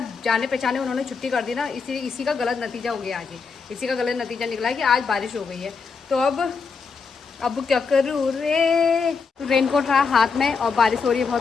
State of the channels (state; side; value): quieter; right; 5.1 dB